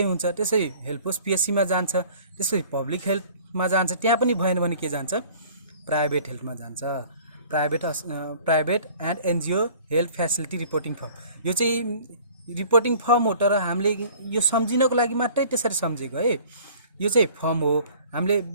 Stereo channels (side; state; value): both; inverted; correlation -0.50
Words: हुन्छ। त्यसै हेल्पोस पिएससीमा जान्छ, त्यसपछि पब्लिक हेल्थमा जान्छ। त्यहाँ पनि भएन भने के जान्छ, प्राइभेट हेल्थमा जान्छ। Private and NGO health facility reporting form. यो चाहिँ रिपोर्टिङ फर्म हो, तर हामीले यो सम्झिनको लागि मात्रै त्यसरी सम्झेको है। यो चाहिँ फर्म हो। हामीले